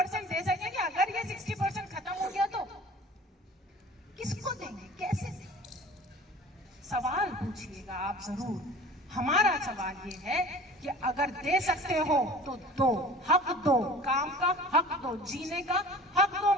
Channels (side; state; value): both; normal; correlation 0.43